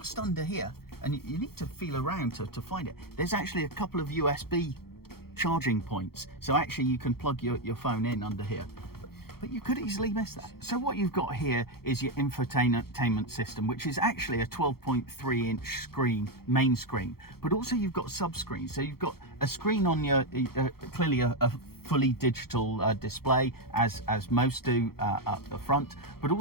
under here, and you need to feel around to find it, there's actually a couple of USB charging points. So actually you can plug your phone in under here. But you could easily miss that. So what you've got here is your infotainment system, which is actually a 12.3 inch screen, main screen, but also you've got sub-screens. So you've got a screen on your, clearly a fully digital display, as most do up the front, but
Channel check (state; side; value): late; right; 0.94 ms